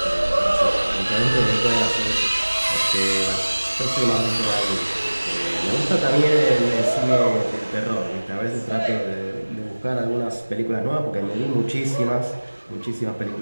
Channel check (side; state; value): both; inverted; correlation -1.00